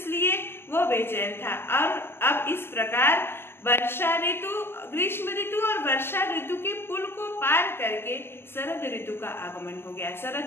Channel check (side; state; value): right; late; 0.11 ms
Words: वो बेचैन था। और अब इस प्रकार वर्षा ऋतु, ग्रीष्म ऋतु और वर्षा ऋतु के पुल को पार करके शरद ऋतु का आगमन हो गया।